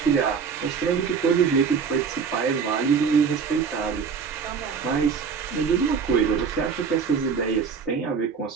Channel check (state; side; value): quieter; left; 6.1 dB